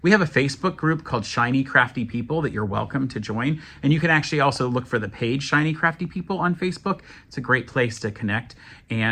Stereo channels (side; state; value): both; identical; correlation 1.00